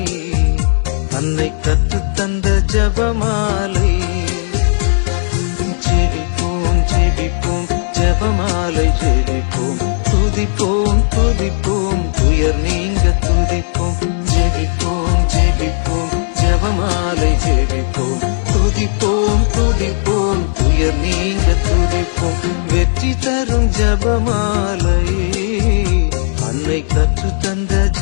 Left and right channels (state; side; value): silent; right; digital silence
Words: அன்னை கற்றுத்தந்த ஜபமாலை. ஜெபிப்போம் ஜெபிப்போம் ஜபமாலை ஜெபிப்போம், துதிப்போம் துதிப்போம் துயர் நீங்க துதிப்போம். ஜெபிப்போம் ஜெபிப்போம் ஜபமாலை ஜெபிப்போம், துதிப்போம் துதிப்போம் துயர் நீங்க துதிப்போம். வெற்றி தரும் ஜபமாலை, அன்னை கற்றுத்தந்த